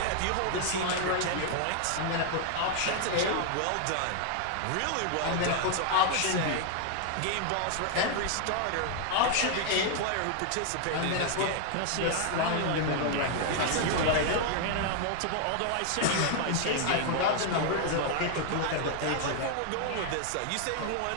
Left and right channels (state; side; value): different; both; correlation 0.00